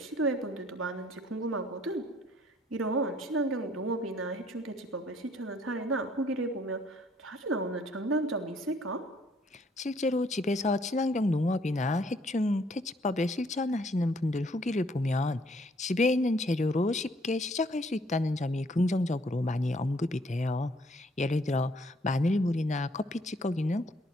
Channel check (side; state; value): both; normal; correlation 0.64